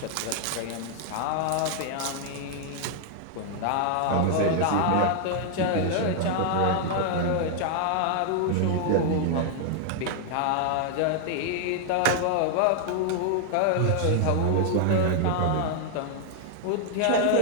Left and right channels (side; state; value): both; different; correlation 0.00